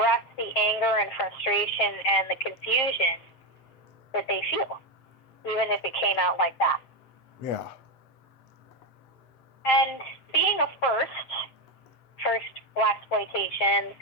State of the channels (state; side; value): late; right; 7.6 ms